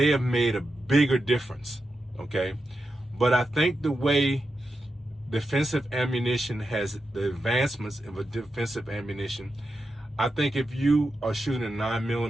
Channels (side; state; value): both; normal; correlation 0.88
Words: have made a bigger difference, okay? But I think the way defensive ammunition has, the advancements of a defensive ammunition, I think if you are shooting a